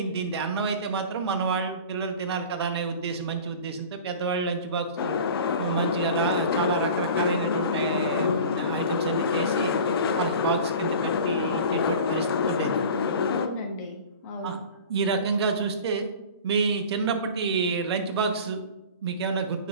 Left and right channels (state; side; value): inverted; both; correlation -0.39